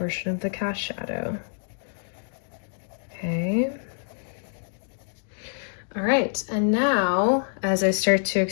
of the cast shadow. Okay. All right, and now as I start to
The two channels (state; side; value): silent; right; digital silence